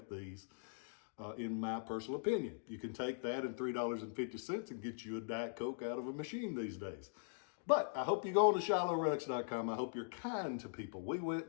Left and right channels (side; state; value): right; silent; digital silence